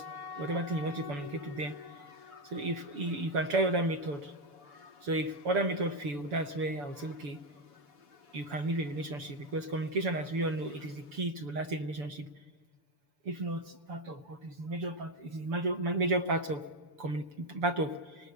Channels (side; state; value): left; late; 6.9 ms